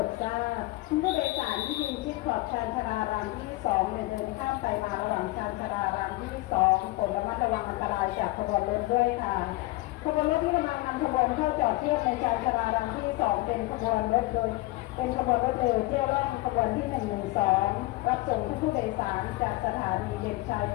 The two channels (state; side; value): quieter; right; 20.0 dB